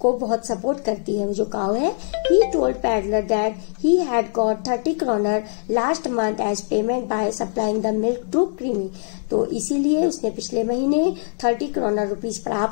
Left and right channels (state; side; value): silent; right; digital silence